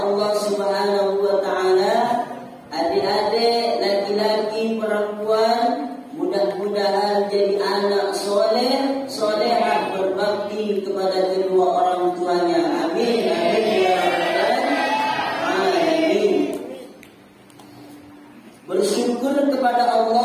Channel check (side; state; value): both; identical; correlation 1.00